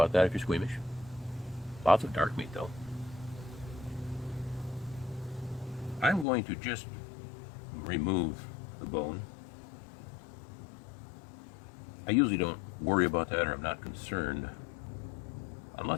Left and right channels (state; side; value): drops out; right; at 6.2 s